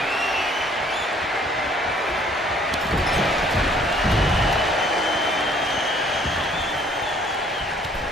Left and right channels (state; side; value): normal; both; correlation 0.59